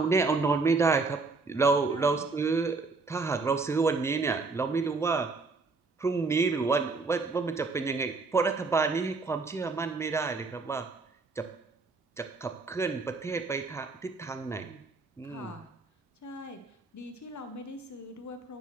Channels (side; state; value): left; quieter; 4.0 dB